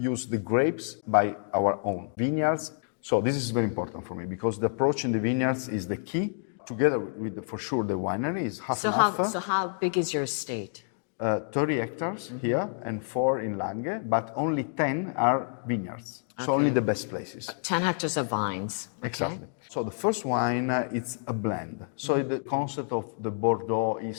the grapes by our own vineyards. So this is very important for me because the approach in the vineyards is the key. Together with, for sure, the winery is half and half. So how big is your estate? 30 hectares here and 4 in Langhe, but only 10 are vineyards. So only the best places. 10 hectares of vines. Okay. Exactly. So the first wine, it's a blend. So the concept of the Bordeaux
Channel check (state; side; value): silent; right; 59 dB below the other